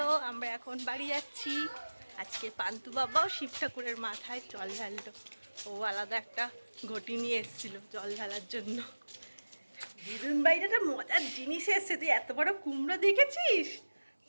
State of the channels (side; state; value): both; inverted; correlation -1.00